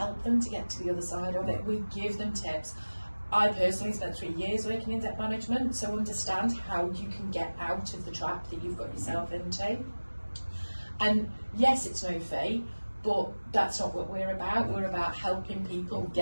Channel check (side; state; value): both; inverted; correlation -1.00